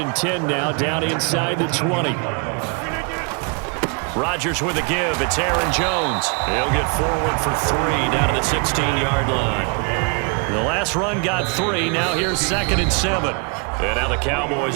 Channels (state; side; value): quieter; left; 34.7 dB